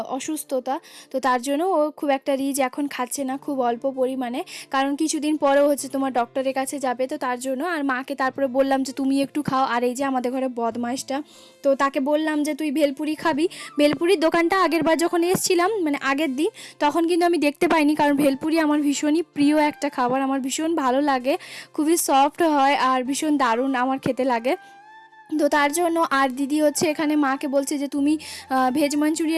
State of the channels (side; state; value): both; identical; correlation 1.00